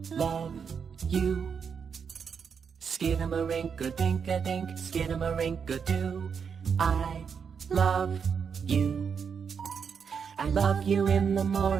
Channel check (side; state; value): left; quieter; 6.6 dB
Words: love you. Skidamarinka-dink-a-dink, skidamarinka-doo, I love you. I love you in the